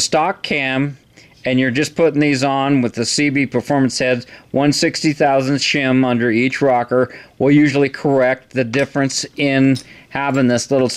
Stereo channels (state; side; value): identical; both; correlation 1.00